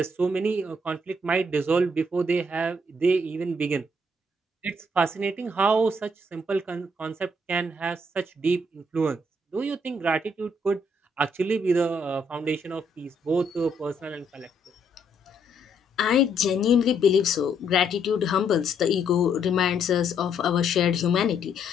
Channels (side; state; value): both; normal; correlation 0.71